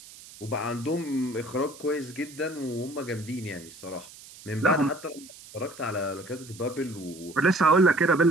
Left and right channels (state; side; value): noise; right; hiss, 19 dB below the sound